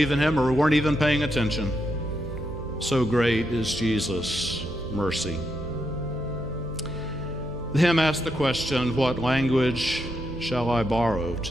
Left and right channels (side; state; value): right; noise; hum, 11 dB below the sound